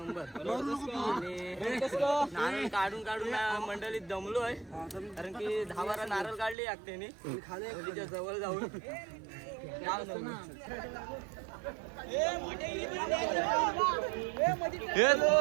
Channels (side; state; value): left; drops out; at 6.6 s